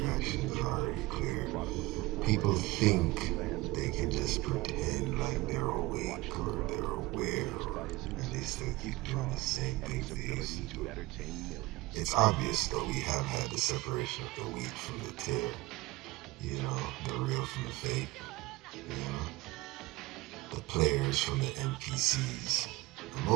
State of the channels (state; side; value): quieter; left; 19.9 dB